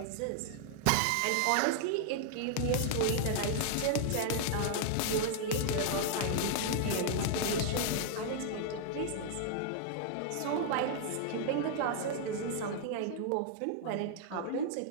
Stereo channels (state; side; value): different; both; correlation -0.01